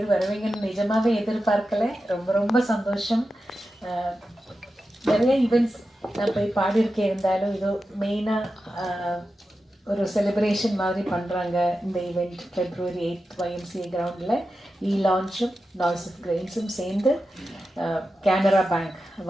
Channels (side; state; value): both; normal; correlation 0.91